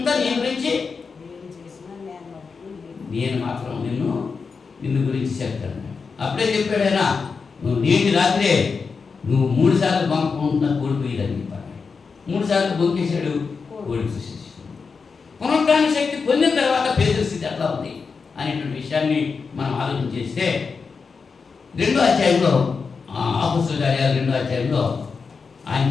నీ గురించి, నేను మాత్రం నిన్ను గురించి చెప్తాను. అప్పుడే చెప్పాడు ఆయన, నువ్వు నేటి రాత్రే నువ్వు 3 సార్లు బంకుంటున్నా కోడిపోయేదని చెప్పాడు. 3 సార్లు బొంకేశాడు, కోడిపోసేసి. పునరుద్ధాన శక్తి పొందిన తర్వాత పేతురు స్థితి ఎట్లా ఉంది అనేటువంటి విషయాన్ని మనం ఆలోచన చేస్తే 2వ అధ్యాయంలో అపొస్తలుల కార్యాలు 2వ అధ్యాయంలో ఆయన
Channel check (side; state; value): right; quieter; 5.1 dB